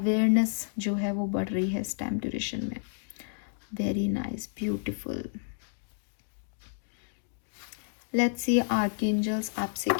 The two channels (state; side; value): silent; right; digital silence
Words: जो है वो बढ़ रही है इस टाइम ड्यूरेशन में। Very nice, beautiful. Let's see archangels आपसे